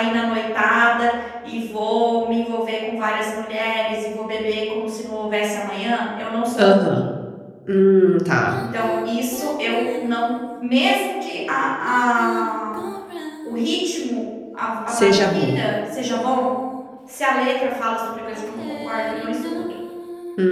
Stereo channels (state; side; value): identical; both; correlation 1.00